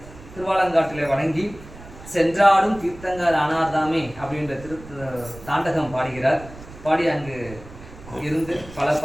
திருவாலங்காட்டில வணங்கி சென்றாடும் தீர்த்தங்கால் ஆனார்தாமே அப்படின்ற தாண்டகம் பாடுகிறார். பாடி அங்கு இருந்து பல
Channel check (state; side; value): noise; right; rumble, 17 dB below the sound